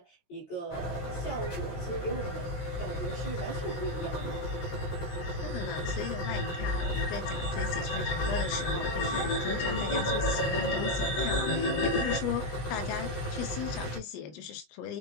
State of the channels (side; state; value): right; late; 17 ms